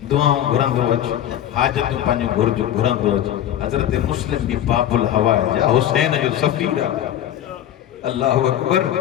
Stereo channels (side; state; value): right; quieter; 11.2 dB